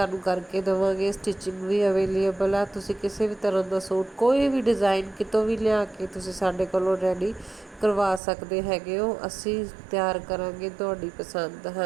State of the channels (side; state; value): left; drops out; at 8.2 s